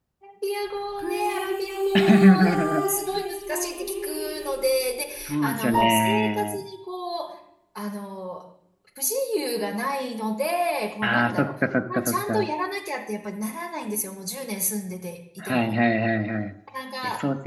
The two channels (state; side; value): identical; both; correlation 1.00